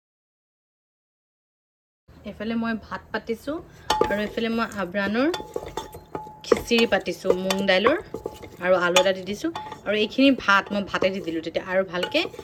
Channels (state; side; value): identical; both; correlation 1.00